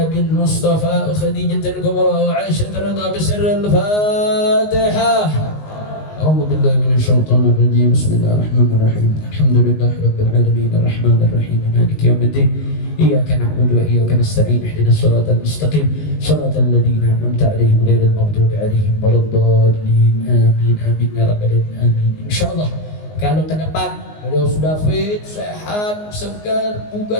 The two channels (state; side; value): late; right; 19 ms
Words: Mustafa Khadijatul Kubra wa Aisyah ridha bisirril Fatihah. أعوذ بالله من الشيطان الرجيم بسم الله الرحمن الرحيم الحمد لله رب العالمين الرحمن الرحيم مالك يوم الدين إياك نعبد وإياك نستعين اهدنا الصراط المستقيم صراط الذين أنعمت عليهم غير المغضوب عليهم ولا الضالين آمين آمين يا رب العالمين آمين إن شاء الله. Kalau ke depan beliau sudah fit, sehat, segar,